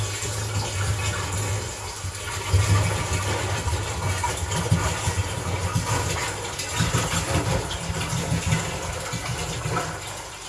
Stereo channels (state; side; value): identical; both; correlation 1.00